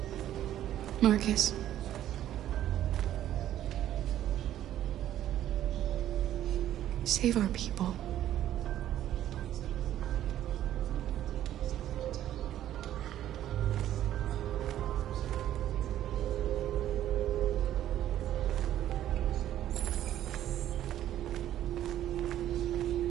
Marcus. Save our people.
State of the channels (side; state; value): left; quieter; 12.1 dB